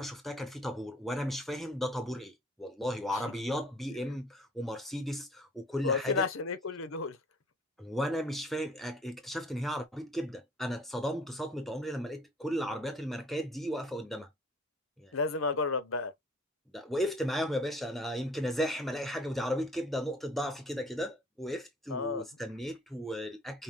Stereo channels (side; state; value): both; normal; correlation 0.54